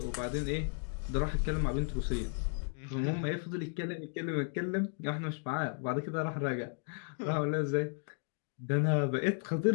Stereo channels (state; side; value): silent; right; 55 dB below the other